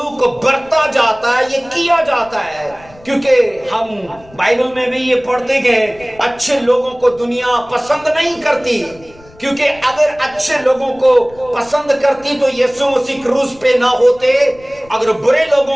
बरता जाता है, ये किया जाता है, क्योंकि हम बाइबल में भी ये पढ़ते हैं अच्छे लोगों को दुनिया पसंद नहीं करती, क्योंकि अगर अच्छे लोगों को पसंद करती तो यीशु मसीह क्रूस पे ना होते, अगर बुरे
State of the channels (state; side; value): noise; left; rumble, 25 dB below the sound